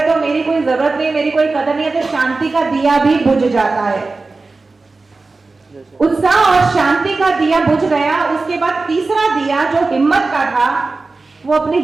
है, तो मेरी कोई जरूरत नहीं, मेरी कोई कदर नहीं है। तो शांति का दिया भी बुझ जाता है। उत्साह और शांति का दिया बुझ गया। उसके बाद तीसरा दिया जो हिम्मत का था, वो अपनी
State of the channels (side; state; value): left; quieter; 3.7 dB